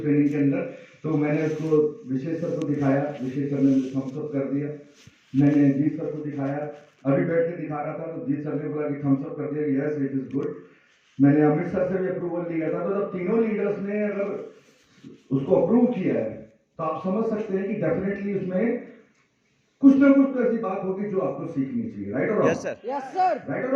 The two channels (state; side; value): identical; both; correlation 1.00